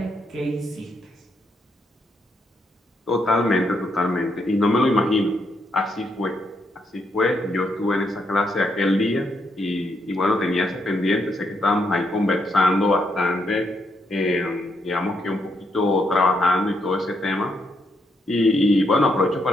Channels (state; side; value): normal; both; correlation 0.78